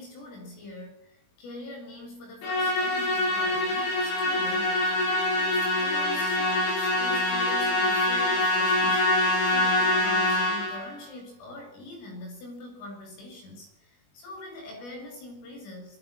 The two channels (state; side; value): late; right; 21 ms